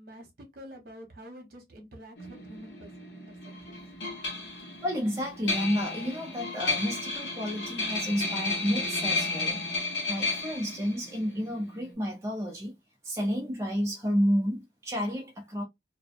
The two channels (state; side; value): normal; both; correlation 0.49